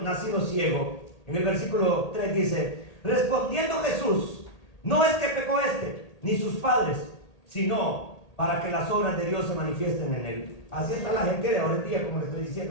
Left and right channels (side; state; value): right; late; 1.8 ms